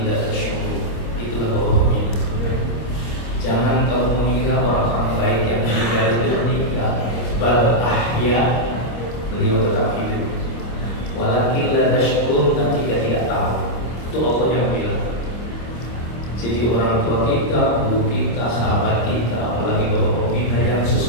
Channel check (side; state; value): right; late; 25 ms